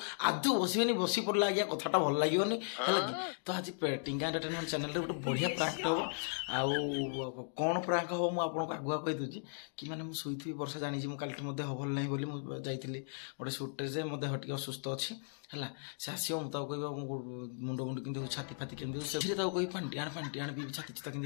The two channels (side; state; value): right; silent; digital silence